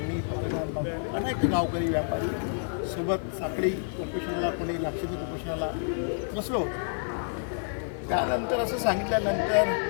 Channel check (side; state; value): right; silent; digital silence